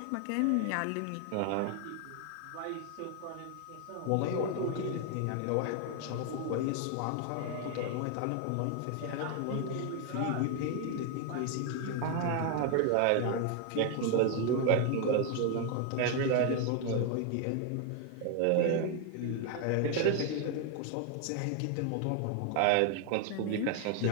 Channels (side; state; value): both; different; correlation 0.01